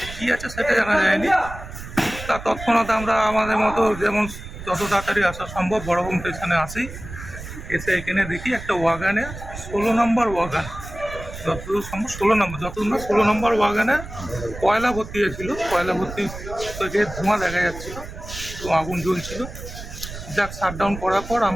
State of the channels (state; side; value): noise; right; rumble, 11 dB below the sound